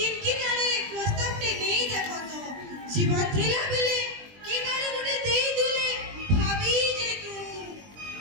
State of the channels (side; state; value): left; late; 20 ms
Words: किनारे प्रस्ताव टे नहीं देखो तो जीवन थिला बेले किनारे गुटे देई दिले भाभी जे तू